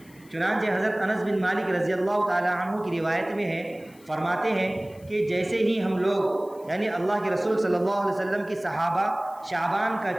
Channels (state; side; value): noise; left; hiss, 27 dB below the sound